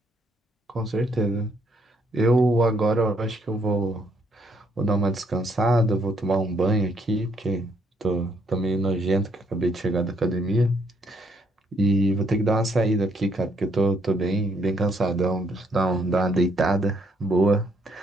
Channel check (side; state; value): both; normal; correlation 0.70